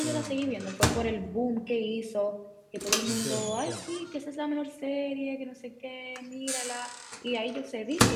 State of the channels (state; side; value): identical; both; correlation 1.00